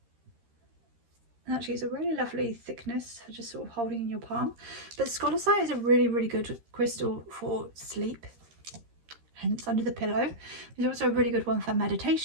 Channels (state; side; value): late; left; 13 ms